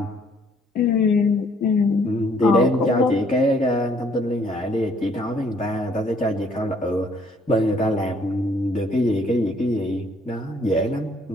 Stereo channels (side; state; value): both; normal; correlation 0.63